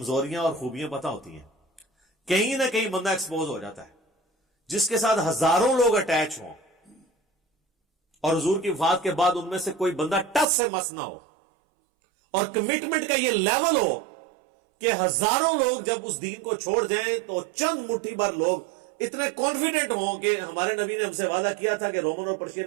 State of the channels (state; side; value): drops out; left; at 10.5 s